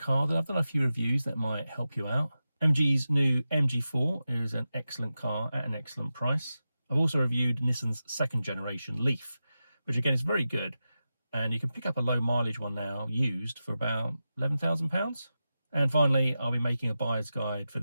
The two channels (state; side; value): inverted; both; correlation -0.92